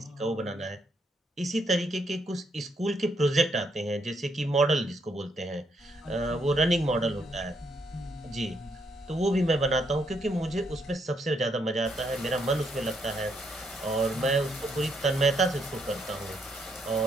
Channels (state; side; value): normal; both; correlation 0.75